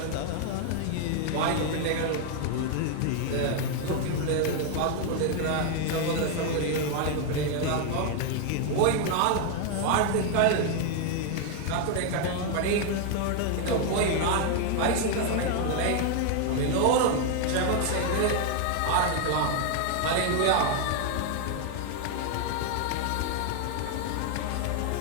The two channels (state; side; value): different; both; correlation 0.00